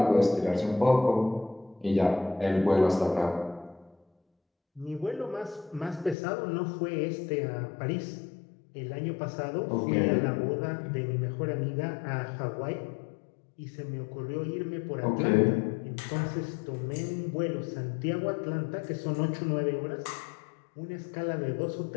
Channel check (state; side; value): drops out; right; at 6.2 s